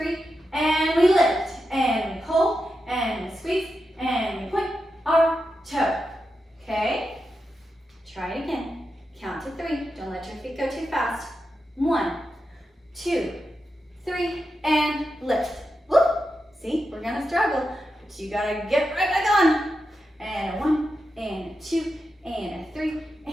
and we lift, and we pull, and we squeeze, and we point our toe. Okay? Try it again. Count to 3. Don't let your feet go too fast. 1, 2, 3, and lift. Whoop! See, we're gonna struggle, but you gotta get right back on. And a 1, and a 2, and a 3,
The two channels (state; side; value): normal; both; correlation 0.88